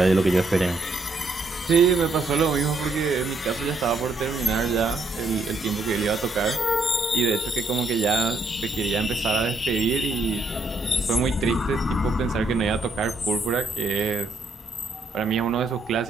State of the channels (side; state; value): left; quieter; 3.0 dB